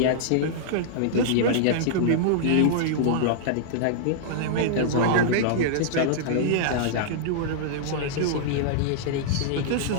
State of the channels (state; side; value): different; both; correlation -0.02